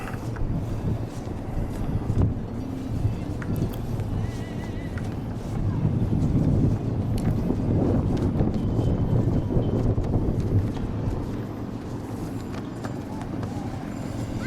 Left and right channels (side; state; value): both; identical; correlation 1.00